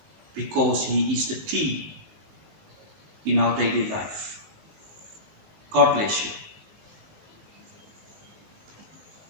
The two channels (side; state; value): left; late; 20 ms